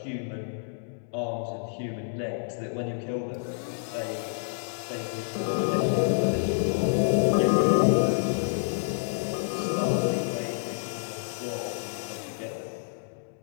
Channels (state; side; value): silent; right; digital silence